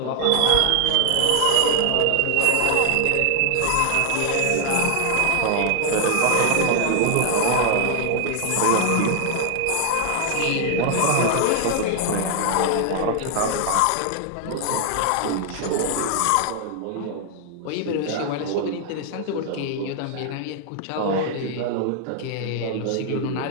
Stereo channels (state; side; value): different; both; correlation 0.00